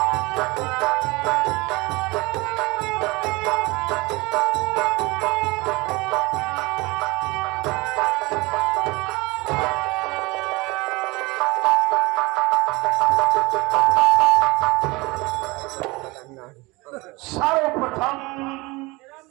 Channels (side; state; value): left; quieter; 23.7 dB